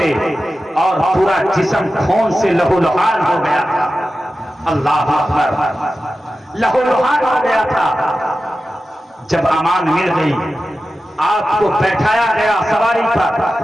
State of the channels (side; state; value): both; normal; correlation 0.93